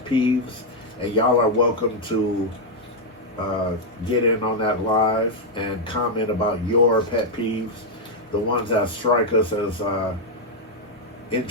peeves, and y'all are welcome to get in on that live and comment about your pet peeves. The ones that strike us as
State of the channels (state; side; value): normal; both; correlation 0.00